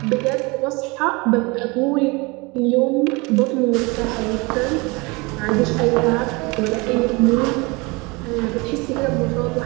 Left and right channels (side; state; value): left; quieter; 26.4 dB